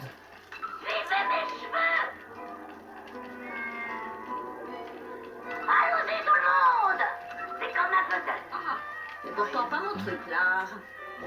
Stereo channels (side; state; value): both; identical; correlation 1.00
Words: Suivez mes cheveux. Allons-y tout le monde. C'est comme un puzzle. Ah, c'est pourtant pas mon truc là.